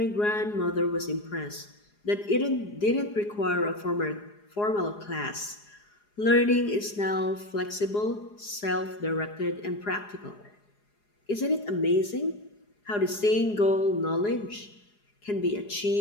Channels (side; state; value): right; late; 4.8 ms